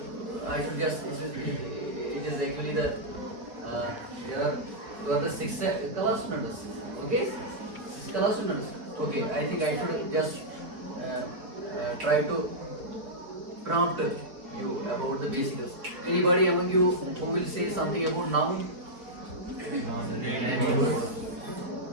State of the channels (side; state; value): left; late; 4.1 ms